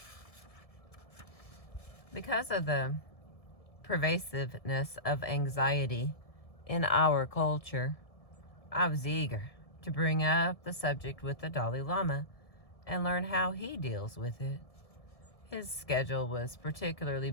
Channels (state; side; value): late; right; 1.7 ms